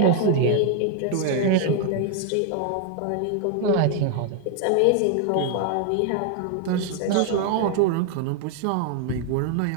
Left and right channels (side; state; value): both; different; correlation 0.00